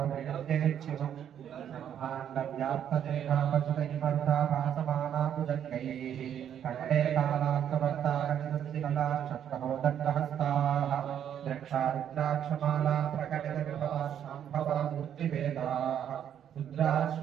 ब्रह्माण्डव्याप्तदेहापसुतैमर्धाभासमानाभुजङ्गैः कण्ठे कालान्तवर्ताकनिदस्तिकलाक्षप्रहो दण्डहस्ताः द्रक्षारुद्राक्षमाला प्रकटितविभवा शाम्भवा मूर्तिभेदाः रुद्रा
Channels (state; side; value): quieter; left; 9.5 dB